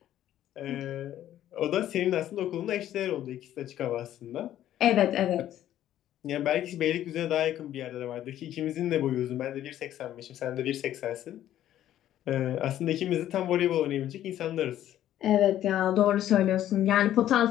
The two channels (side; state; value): right; quieter; 12.2 dB